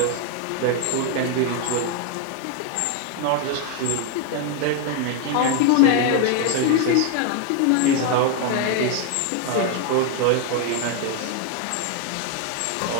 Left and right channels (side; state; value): both; different; correlation 0.01